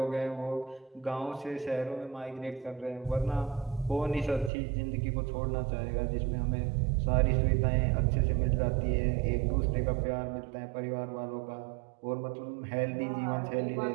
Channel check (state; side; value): drops out; left; at 4.5 s